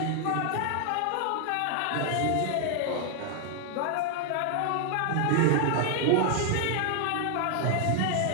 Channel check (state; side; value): different; both; correlation 0.00